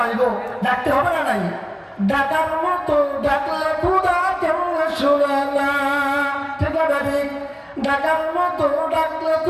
ডাকতে হবে না নাই? ডাকার মতো ডাকলে খোদা কেমন শুনে না, ঠিক আছে ঠিক? ডাকার মতো ডাকলে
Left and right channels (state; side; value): identical; both; correlation 1.00